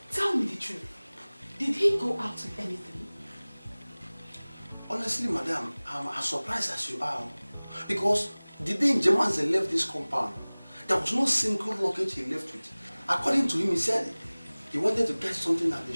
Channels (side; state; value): both; inverted; correlation -1.00